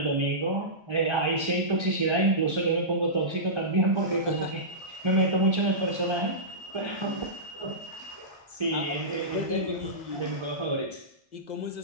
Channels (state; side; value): late; left; 1.3 ms